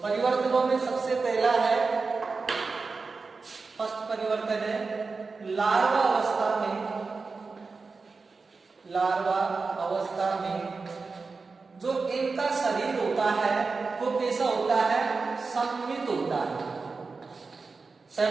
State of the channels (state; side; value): quieter; left; 4.3 dB